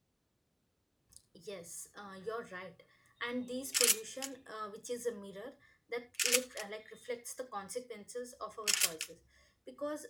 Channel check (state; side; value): identical; both; correlation 1.00